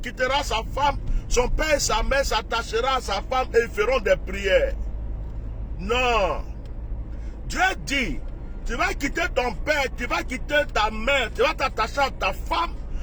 quittera sa femme, son père et sa mère s'attachera à sa femme et ils feront des prières. Non. Dieu dit, tu vas quitter ton père, tu vas quitter ta mère, tu vas t'attacher à ta femme,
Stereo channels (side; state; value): both; identical; correlation 1.00